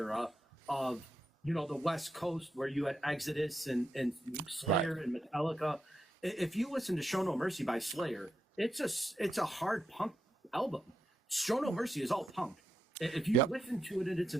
of the West Coast, where you had Exodus and Slayer Right. and Metallica. If you listen to Show No Mercy by Slayer, it's a hard punk album. Show No Mercy is all punk. If you Yep. listen to it in its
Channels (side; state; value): both; normal; correlation 0.85